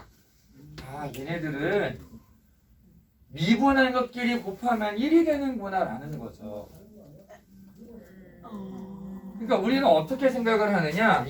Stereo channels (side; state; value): both; identical; correlation 1.00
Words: 얘네들은 미분한 것끼리 곱하면 1이 되는구나 라는 거죠. 그러니까 우리는 어떻게 생각을 하느냐,